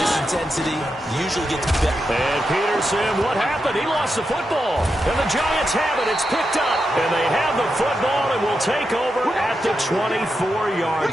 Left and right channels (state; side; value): normal; both; correlation 0.87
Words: intensity usually gets better. And Peterson, what happened? He lost the football. And the Giants have it. It's picked up. And they have the football and will take over at the 24-yard